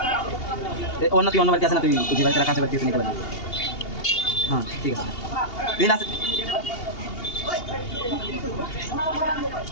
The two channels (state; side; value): late; right; 2.8 ms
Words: অন্য তুই অন্য বাড়িতে আসে না তুই যে বাড়িতে রাখা আছে বাড়িতে নিতে পারবি হ্যাঁ ঠিক আছে তুই আসে